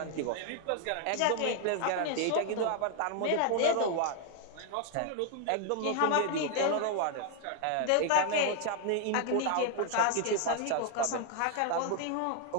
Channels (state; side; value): different; both; correlation 0.00